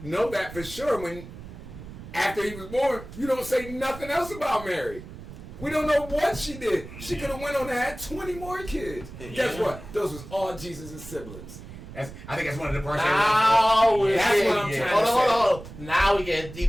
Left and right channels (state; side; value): noise; right; rumble, 14 dB below the sound